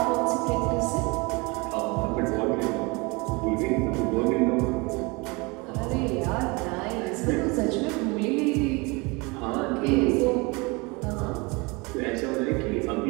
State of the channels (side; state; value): left; quieter; 27.0 dB